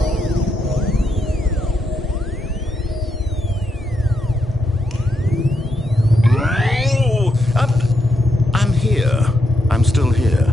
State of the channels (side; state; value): both; normal; correlation 0.80